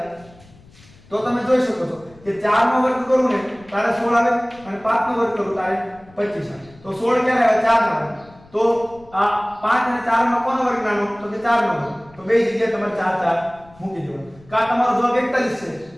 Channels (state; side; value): noise; left; rumble, 25 dB below the sound